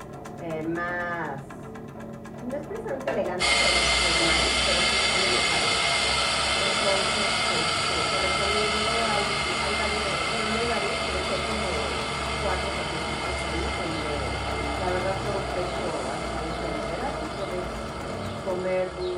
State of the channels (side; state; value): both; identical; correlation 1.00